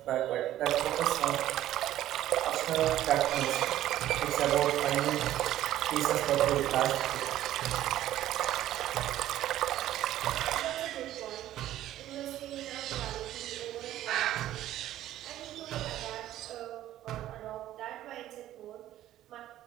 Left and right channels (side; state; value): left; quieter; 13.3 dB